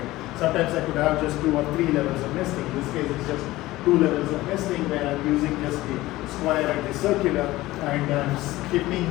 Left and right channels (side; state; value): right; quieter; 17.7 dB